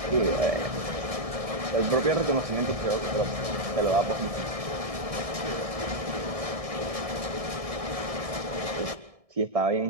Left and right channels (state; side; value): late; left; 1.6 ms